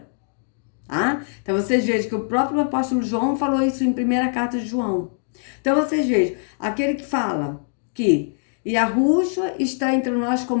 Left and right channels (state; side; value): silent; right; 64 dB below the other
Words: tá? Então vocês vejam que o próprio apóstolo João falou isso em primeira carta de João. Então vocês vejam, aquele que fala que Yahushua está entre nós